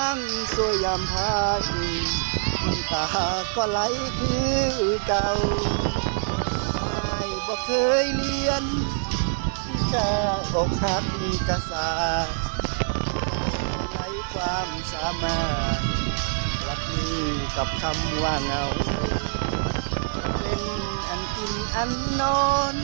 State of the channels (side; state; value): left; silent; digital silence